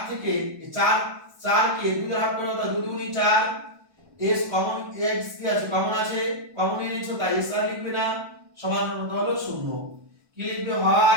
থেকে এই 4 কে 2 দ্বারা ভাগ করলে হয় 2 গুণ 4 s কমন x কি আছে কমন আছে কমন নিয়ে নিয়েছো তাই s আর লিখবে না সমান হলো 0 কি লিখবে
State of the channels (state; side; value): late; left; 1.2 ms